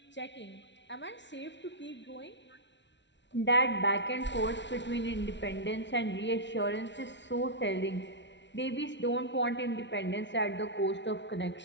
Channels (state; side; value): late; right; 0.52 ms